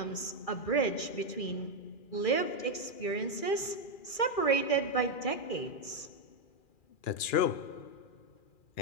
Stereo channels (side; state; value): right; late; 2.4 ms